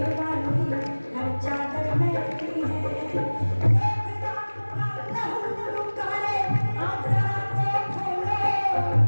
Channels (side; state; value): both; inverted; correlation -1.00